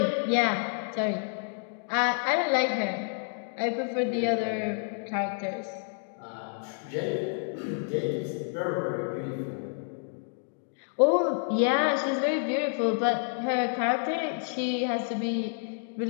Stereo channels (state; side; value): silent; right; 58 dB below the other